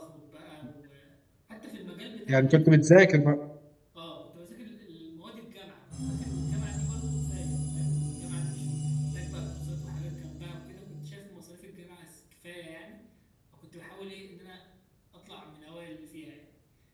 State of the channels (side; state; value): both; identical; correlation 1.00